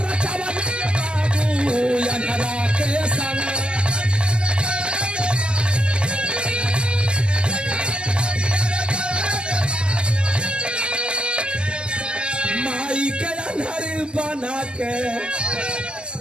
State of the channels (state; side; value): late; left; 0.054 ms